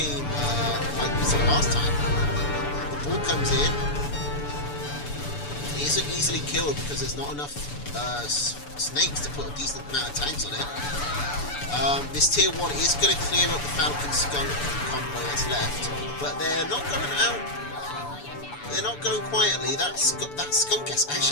like we saw last time. The boar comes in. He isn't easily killed because there's not enough snakes to put a decent amount of tags on it. This tier 1 is going to clear up the Falcon Skunk combo that's left, but they're not going out. They're not going quietly. That skunk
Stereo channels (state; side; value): late; right; 6.9 ms